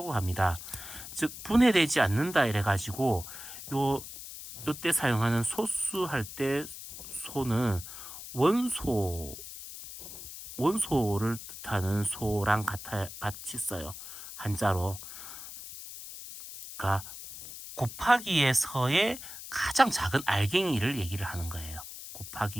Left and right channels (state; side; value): noise; left; hiss, 12 dB below the sound